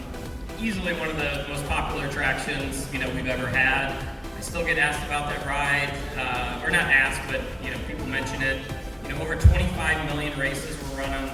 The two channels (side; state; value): both; identical; correlation 1.00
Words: Easily one of the most popular attractions we've ever had. I still get asked about that ride, or not asked, but people mention it. Over 25 million races were run on